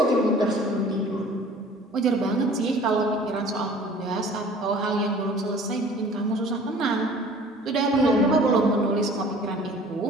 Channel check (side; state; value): both; normal; correlation 0.49